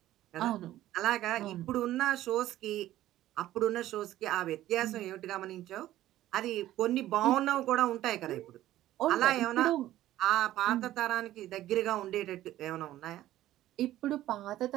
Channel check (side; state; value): left; quieter; 14.2 dB